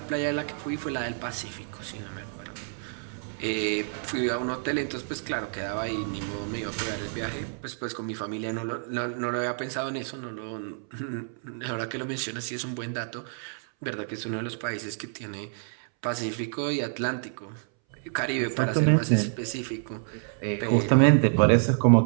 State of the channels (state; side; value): silent; left; 59 dB below the other